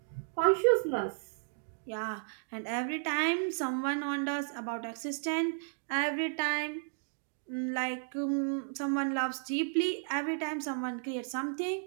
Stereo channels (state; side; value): silent; left; digital silence